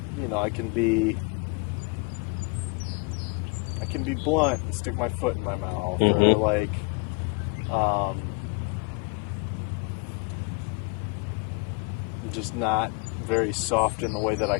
can be blunt and stick my foot in my mouth, or just not very soft in the way that I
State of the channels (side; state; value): right; quieter; 28.0 dB